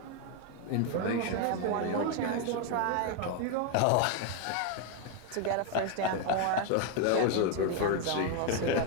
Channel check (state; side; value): different; both; correlation 0.01